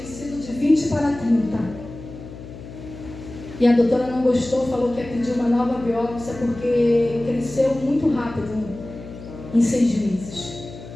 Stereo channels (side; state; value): left; noise; hum, 14 dB below the sound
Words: de 20 para 30. E a doutora não gostou, falou que ia pedir uma nova biópsia porque cresceu muito rápido, em 6 meses.